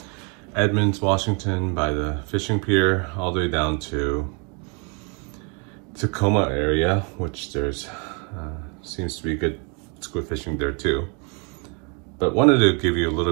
Edmonds, Washington by the fishing pier all the way down to Tacoma area, which there's seems to be good squid fishing there too. But wanted to give you a little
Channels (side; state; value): left; quieter; 35.0 dB